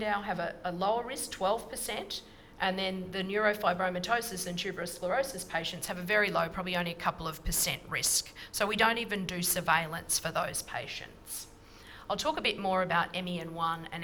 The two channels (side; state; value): both; identical; correlation 1.00